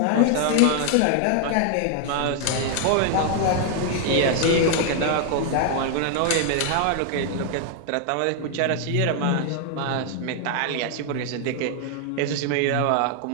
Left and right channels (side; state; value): both; different; correlation 0.00